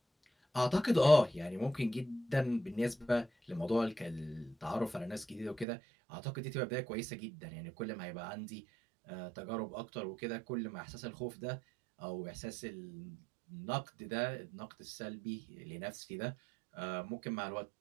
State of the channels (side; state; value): left; drops out; at 5.7 s